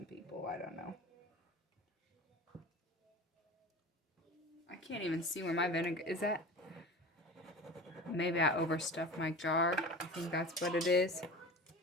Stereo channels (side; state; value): both; normal; correlation 0.34